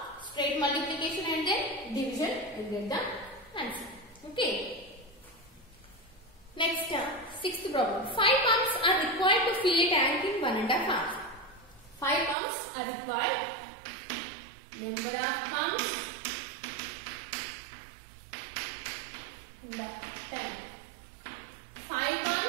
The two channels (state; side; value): drops out; left; at 12.4 s